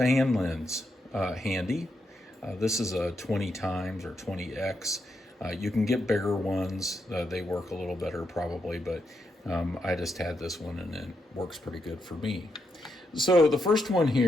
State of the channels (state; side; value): normal; both; correlation 0.82